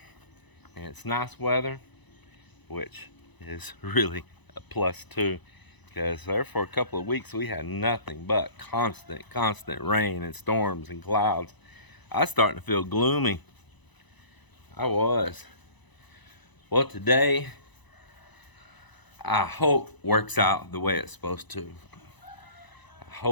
and it's nice weather, which is really a plus too, because there for a couple of weeks we had nothing but constant rain and storms and clouds. I was starting to feel gloomy. I was. Well, today I hope works out the way it's supposed to. I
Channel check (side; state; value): right; late; 1.0 ms